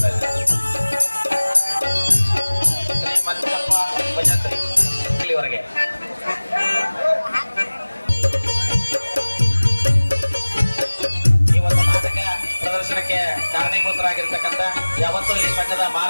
ಇದ್ದಾರೆ. ಶ್ರೀ ಮಂಜಪ್ಪ ಭಜಂತ್ರಿ ಇಲ್ಲಿವರೆಗೆ ಈ ಒಂದು ನಾಟಕ ಪ್ರದರ್ಶನಕ್ಕೆ ಕಾರಣೀಭೂತರಾಗಿರ್ತಕ್ಕಂಥ ಯಾವತ್ತೂ ಈ ಸಂಘದ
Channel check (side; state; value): both; inverted; correlation -1.00